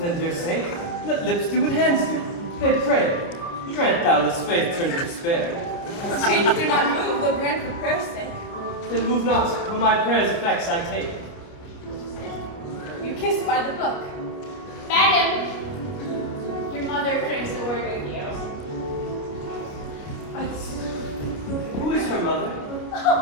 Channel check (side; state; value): right; late; 29 ms